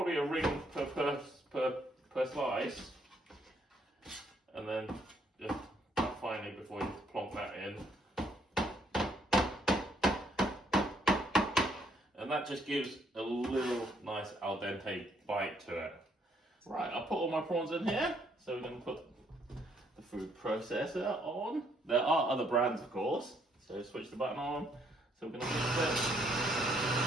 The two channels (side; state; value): both; normal; correlation 0.70